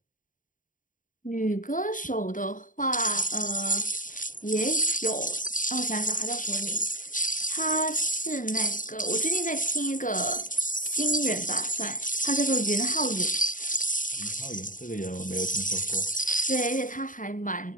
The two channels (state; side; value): late; right; 0.38 ms